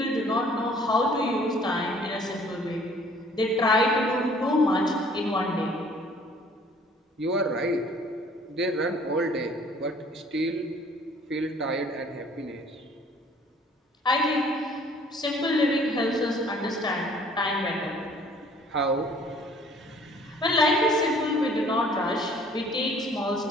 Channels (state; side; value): normal; both; correlation 0.55